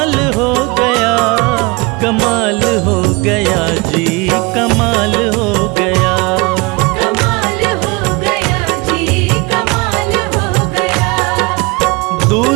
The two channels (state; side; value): quieter; left; 26.2 dB